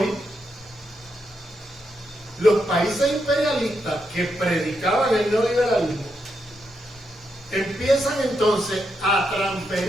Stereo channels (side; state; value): both; normal; correlation 0.82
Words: los países imperialistas que predicaban el neoliberalismo empiezan entonces a